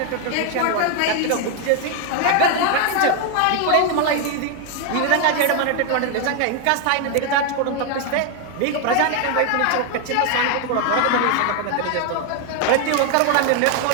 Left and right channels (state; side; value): different; both; correlation 0.01